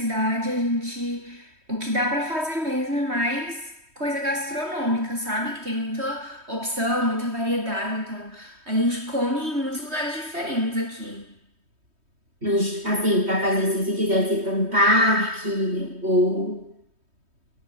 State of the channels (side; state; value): left; late; 3.2 ms